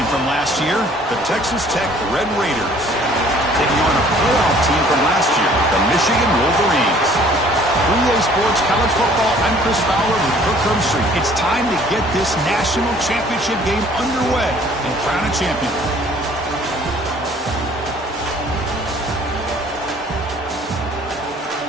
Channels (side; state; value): both; normal; correlation 0.55